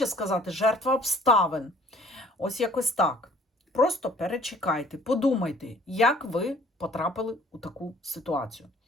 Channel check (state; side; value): normal; both; correlation 0.55